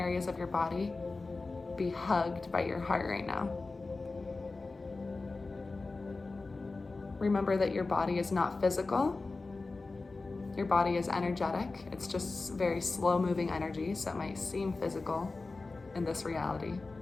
of your body be hugged by your heart right now. Remember that your body is not physical. Your body is energetic. It's just very slow moving energy, so it might seem physical in this reality.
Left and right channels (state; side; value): quieter; right; 3.6 dB